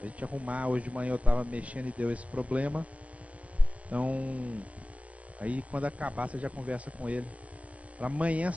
A gente arrumar, hoje de manhã eu estava mexendo e deu esse problema. Então, aí quando acabar você já conversa com ele. Para amanhã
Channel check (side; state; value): left; late; 0.065 ms